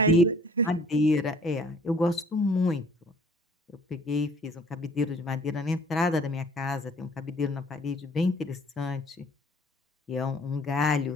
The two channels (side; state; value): both; normal; correlation 0.56